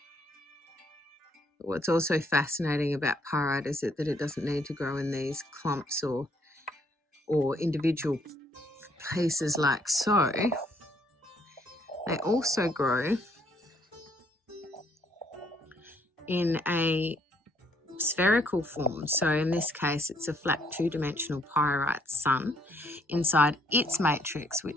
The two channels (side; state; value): both; normal; correlation 0.67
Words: What's also fascinating about pyrite is that it doesn't need to grow in these clumps or individual pieces like so. They also grow in a spherical form. So in this case, it's a flat two-dimensional pyrite sun inside its matrix,